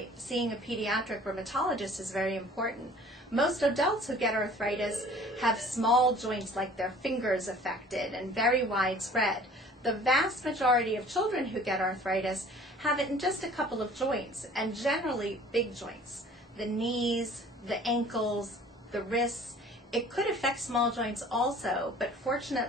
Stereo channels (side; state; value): both; normal; correlation 0.50